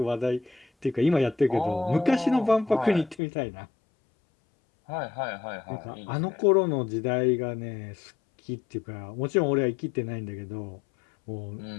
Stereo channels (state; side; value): drops out; right; at 3.2 s